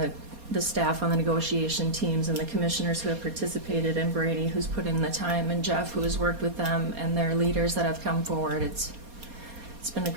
the staff on the negotiation teams and the commissioners who have participated, and Brady who's put in the time, and Jeff who has worked with them, and their leaders that have come forward. It's been a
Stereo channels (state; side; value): late; left; 4.2 ms